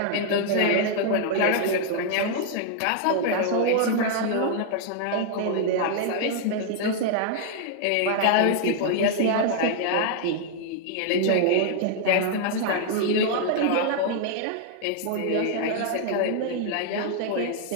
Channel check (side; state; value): both; different; correlation 0.00